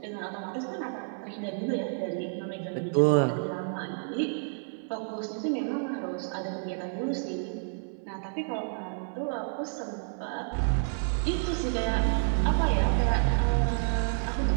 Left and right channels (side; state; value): left; silent; 58 dB below the other